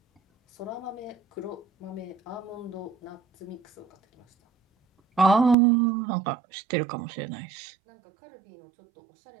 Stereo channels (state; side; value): drops out; left; at 5.6 s